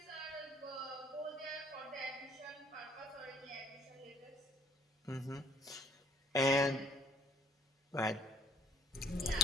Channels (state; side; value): normal; both; correlation 0.62